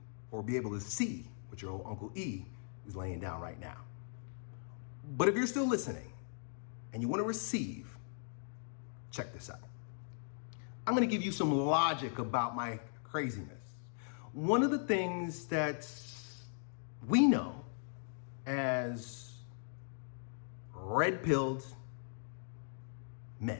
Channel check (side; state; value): right; silent; digital silence